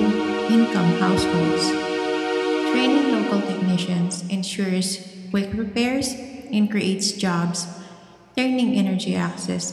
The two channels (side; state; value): both; identical; correlation 1.00